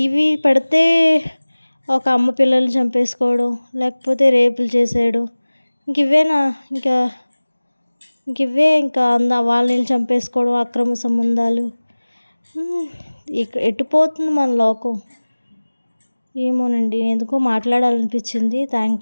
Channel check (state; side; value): inverted; both; correlation -1.00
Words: పెడితే ఒక అమ్మ పిల్లల్ని చంపేసుకోవడం, లేకపోతే రేపులు చేసేయడం. ఇవేనా ఇంకా ఇంకా వాళ్ళని చంపేసుకోవడం, అక్రమ సంబంధాలు. ఎటు పోతుంది మన లోకం? ఏమోనండి ఎందుకో మాట్లాడాలనిపించింది.